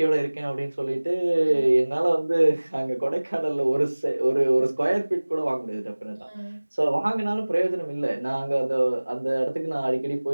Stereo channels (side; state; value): both; inverted; correlation -1.00